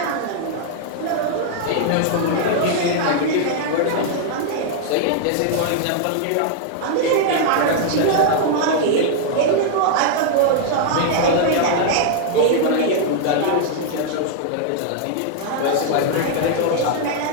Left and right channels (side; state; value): both; different; correlation -0.01